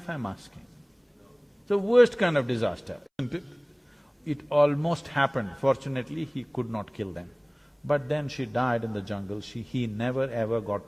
I'm asking? It's the worst kind of disaster, isn't it? It almost happened, fortunately he could not kill them. But then she died in the jungle, he never ever got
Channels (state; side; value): identical; both; correlation 1.00